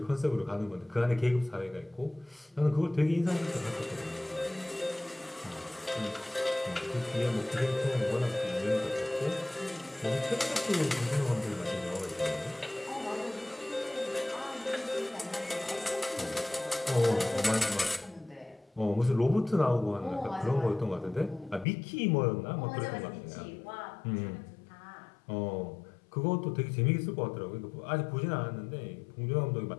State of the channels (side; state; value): right; drops out; at 21.7 s